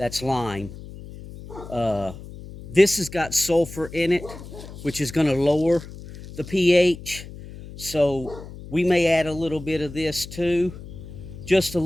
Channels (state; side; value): noise; left; hum, 14 dB below the sound